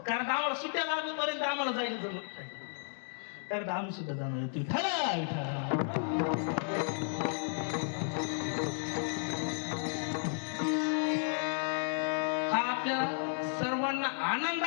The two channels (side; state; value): right; silent; digital silence